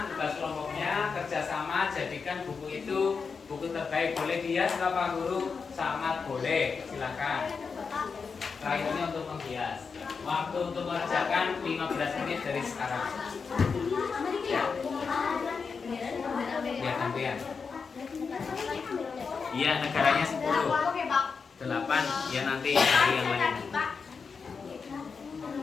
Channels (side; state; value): right; quieter; 5.3 dB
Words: tugas kelompoknya, kerjasama, jadikan buku itu buku terbaik. Boleh dihias Bapak Guru? Sangat boleh, silakan. Terakhirnya untuk menghias. Waktu untuk mengerjakan 15 menit dari sekarang. Ya, ya gantian. Iya, negaranya 10. 8, ya nanti dari yang lain.